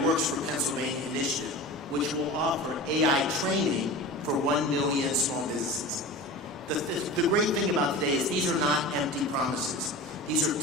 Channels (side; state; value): both; normal; correlation 0.33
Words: Works for Pennsylvania initiative, which will offer AI training for 1 million small businesses. The great thing about today is these are not empty promises. These are